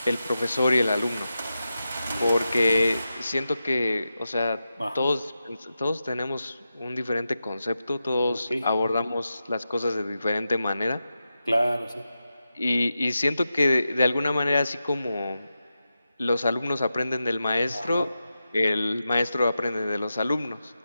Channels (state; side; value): inverted; both; correlation -0.91